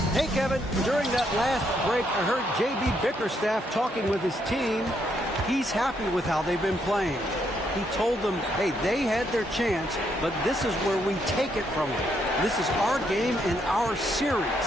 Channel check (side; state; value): both; normal; correlation 0.75